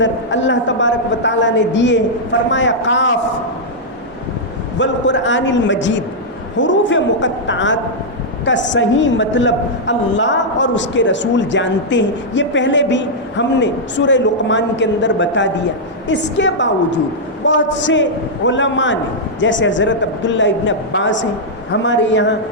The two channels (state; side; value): normal; both; correlation -0.07